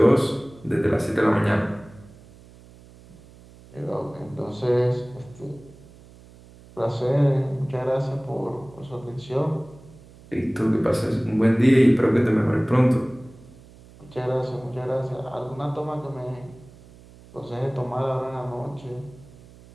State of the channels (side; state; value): right; noise; hum, 23 dB below the sound